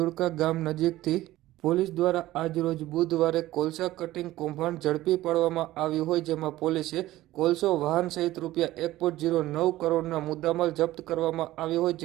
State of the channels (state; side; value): quieter; left; 16.0 dB